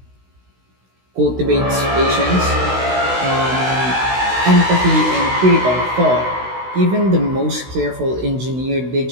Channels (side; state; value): left; late; 16 ms